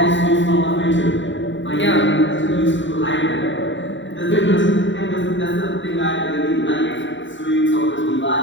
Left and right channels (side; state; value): right; late; 0.54 ms